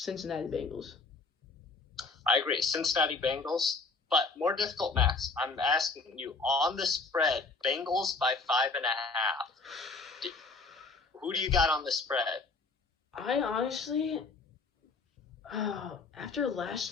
Bengals. I agree. Cincinnati Bengals. But more difficult, Max. I'm asking you, on the spread, Bengals by 5.5. Who do you got on the spread? I honestly, after last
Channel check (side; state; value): right; quieter; 4.0 dB